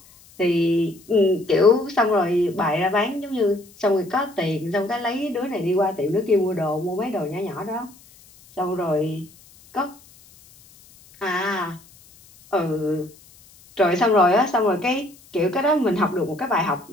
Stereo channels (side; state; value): left; noise; hiss, 26 dB below the sound